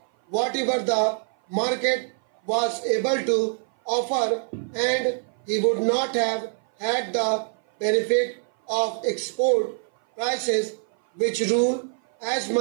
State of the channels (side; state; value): left; silent; 57 dB below the other